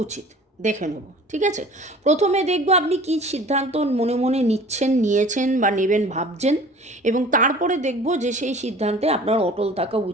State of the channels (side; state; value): both; normal; correlation 0.45